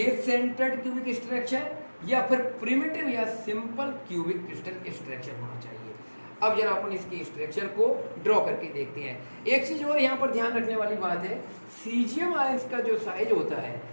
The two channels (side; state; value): both; inverted; correlation -1.00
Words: सेंटर्ड क्यूबिक स्ट्रक्चर या फिर प्रिमिटिव या सिंपल क्यूबिक क्रिस्टल स्ट्रक्चर होना चाहिए। अब जरा अपन इसके स्ट्रक्चर को ड्रॉ करके देखते हैं। एक चीज और यहाँ पर ध्यान रखने वाली बात है, सीजियम आयंस का जो साइज होता है,